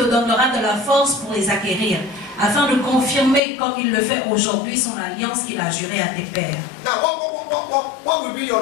donnera de la force pour les acquérir, afin de confirmer comme il le fait aujourd'hui son alliance qu'il a jurée à tes pères. Now, what will be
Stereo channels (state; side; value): drops out; right; at 3.4 s